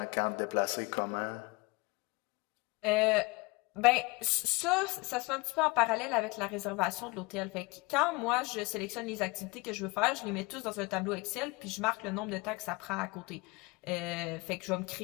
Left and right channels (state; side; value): quieter; right; 25.7 dB